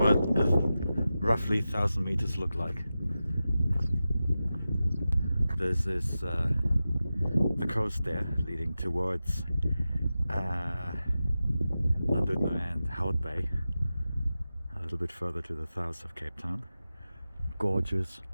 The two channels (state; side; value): inverted; both; correlation -0.93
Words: roughly 1,000 meters look like. This is the coast there leading towards London and Hout Bay, a little bit further to the south of Cape Town. Gorgeous,